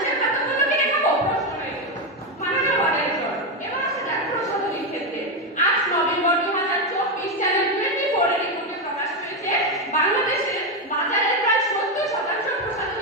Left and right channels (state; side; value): normal; both; correlation 0.08